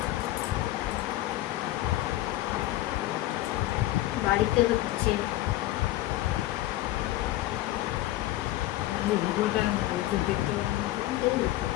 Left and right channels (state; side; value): quieter; right; 16.0 dB